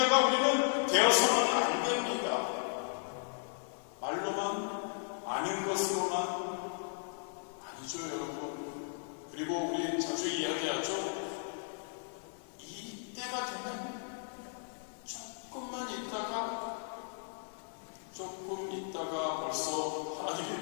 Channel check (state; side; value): silent; right; digital silence